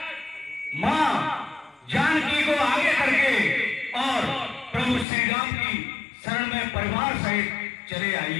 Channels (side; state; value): right; drops out; at 5.1 s